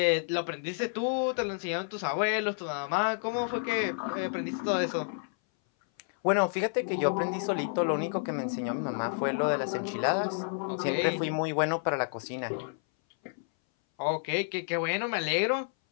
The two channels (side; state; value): right; silent; 58 dB below the other